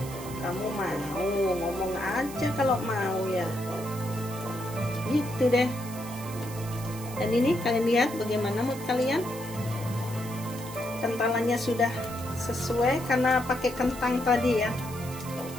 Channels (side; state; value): right; noise; hiss, 14 dB below the sound